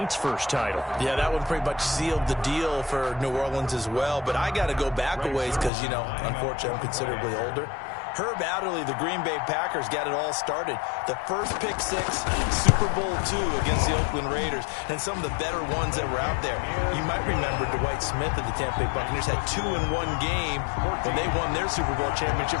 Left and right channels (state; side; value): drops out; right; at 5.7 s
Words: first title. Yeah, that one pretty much sealed the deal for New Orleans as well. But I got to go back a ways because, you know, unfortunately I'm considerably older. Herb Adderley, the Green Bay Packers, got it all started. The first pick 6, Super Bowl II against the Oakland Raiders, and some of the better ones that were out there. You might remember Dwight Smith of the Tampa Bay Buccaneers had 2 in one game when they won their Super Bowl